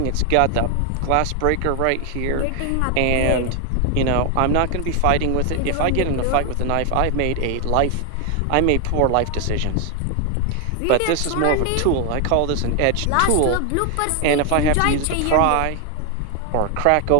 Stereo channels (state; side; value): different; both; correlation 0.01